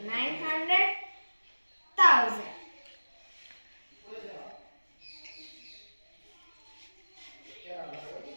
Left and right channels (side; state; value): both; inverted; correlation -1.00